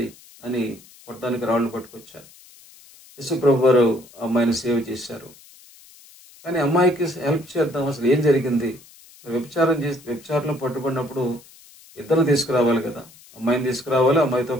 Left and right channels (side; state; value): left; noise; hiss, 24 dB below the sound